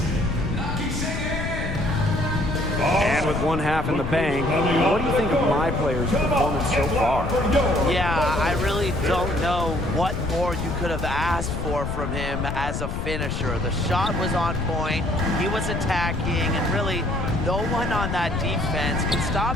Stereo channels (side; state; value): left; noise; rumble, 4 dB below the sound